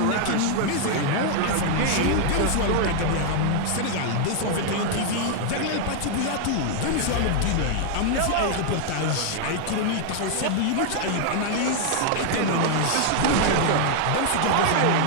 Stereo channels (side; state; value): both; different; correlation 0.00